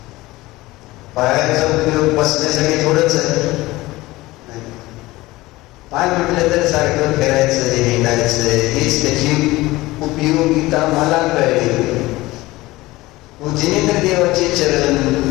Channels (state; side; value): quieter; right; 19.3 dB